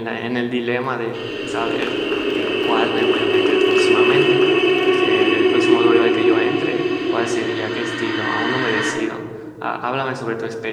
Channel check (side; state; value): both; identical; correlation 1.00